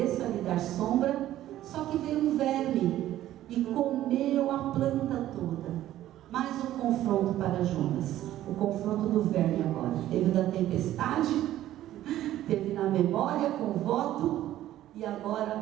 lhe dar sombra. Só que veio um verme e comeu a planta toda. Mais um confronto para Jonas. O confronto do verme agora. Teve da tempestade, teve na memória com o voto, e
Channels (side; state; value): left; quieter; 13.4 dB